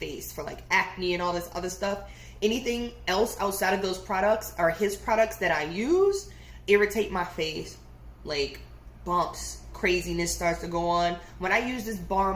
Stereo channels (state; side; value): identical; both; correlation 1.00